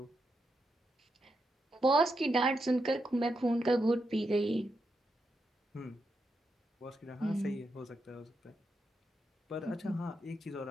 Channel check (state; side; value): normal; both; correlation 0.84